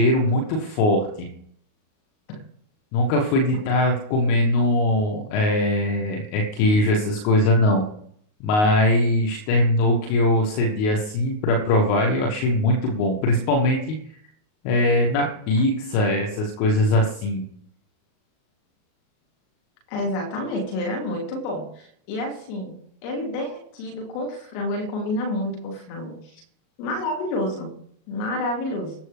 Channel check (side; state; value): right; late; 38 ms